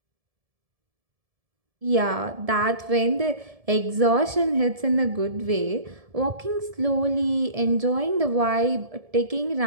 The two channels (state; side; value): late; left; 1.7 ms